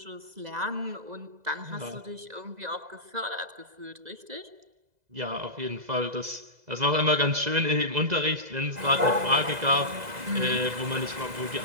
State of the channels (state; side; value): late; left; 2.0 ms